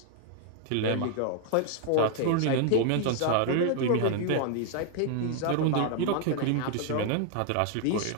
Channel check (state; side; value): different; both; correlation 0.00